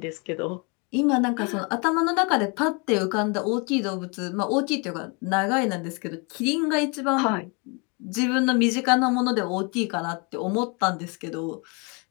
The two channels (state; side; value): quieter; right; 32.5 dB